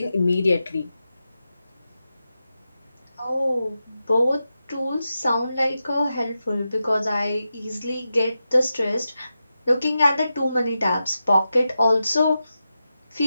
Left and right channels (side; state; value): both; inverted; correlation -0.90